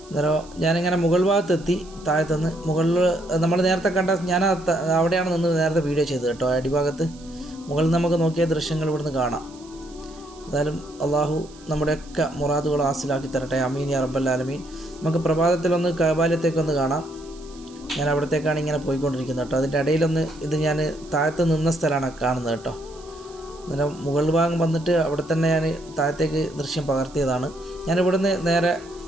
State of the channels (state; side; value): noise; right; hiss, 24 dB below the sound